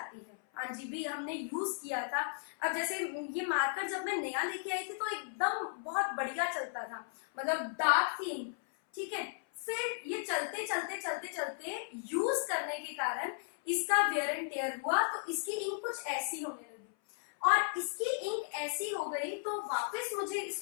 है। हाँ जी भी हमने यूज किया था। अब जैसे ये मार्कर जब मैं नया लेके आई थी तो एकदम बहुत बढ़िया चलता था, मतलब डार्क थी इंक, ठीक है। फिर ये चलते चलते चलते चलते यूज करने के कारण इसका वेयर एंड टेयर हुआ, तो इसकी इंक कुछ ऐसी होने लगी, और इसकी इंक ऐसी हो गई तो वापस मुझे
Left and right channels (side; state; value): right; silent; 54 dB below the other